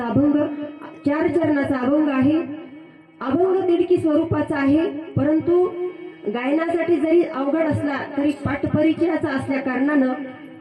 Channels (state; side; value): identical; both; correlation 1.00